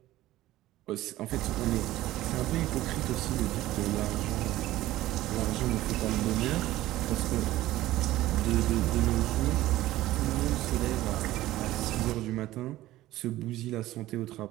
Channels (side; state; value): left; quieter; 15.8 dB